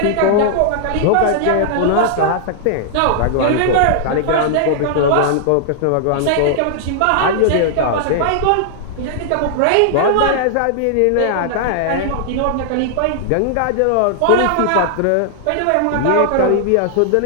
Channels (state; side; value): different; both; correlation -0.01